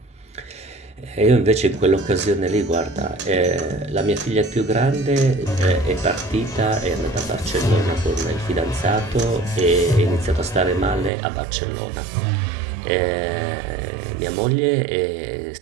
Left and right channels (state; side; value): drops out; left; at 11.1 s